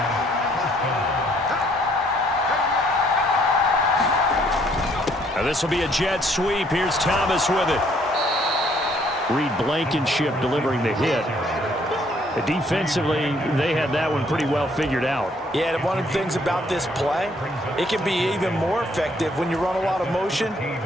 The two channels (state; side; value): normal; both; correlation 0.65